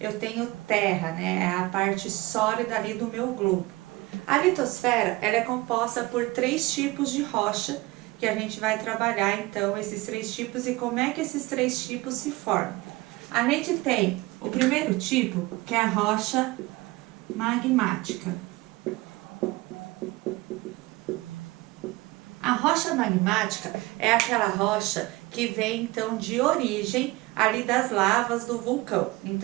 tenho terra, né? É a parte sólida ali do meu globo. A litosfera, ela é composta por 3 tipos de rocha, que a gente vai trabalhar então esses 3 tipos e como é que esses 3 tipos se formam. A gente tem o primeiro tipo, que é a rocha magmática. A rocha magmática é aquela rocha que vem então de origem ali das lavas do vulcão.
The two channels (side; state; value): left; quieter; 21.3 dB